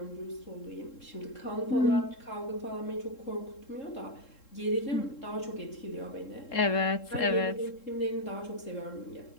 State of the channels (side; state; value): right; late; 3.7 ms